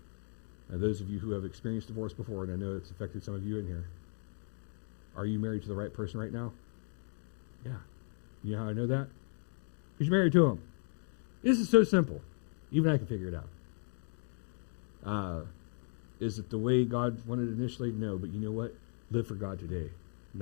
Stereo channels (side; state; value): right; silent; 54 dB below the other